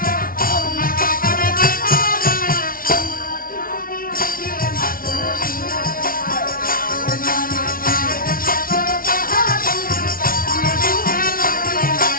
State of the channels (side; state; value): right; late; 0.42 ms